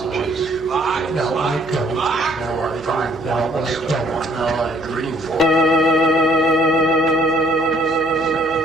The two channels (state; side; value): noise; right; hum, 22 dB below the sound